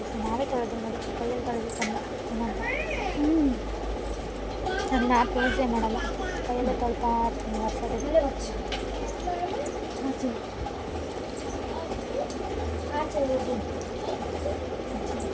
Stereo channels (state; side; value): identical; both; correlation 1.00